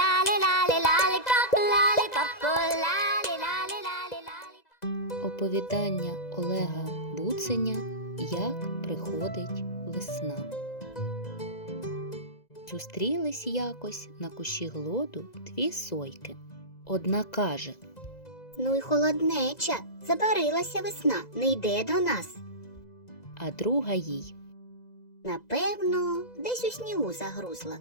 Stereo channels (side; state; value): right; late; 2.0 ms